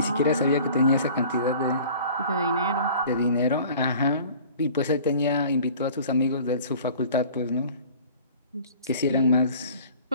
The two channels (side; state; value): both; inverted; correlation -0.47